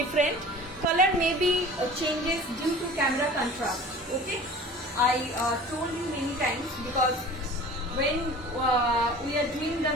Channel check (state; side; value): normal; both; correlation 0.42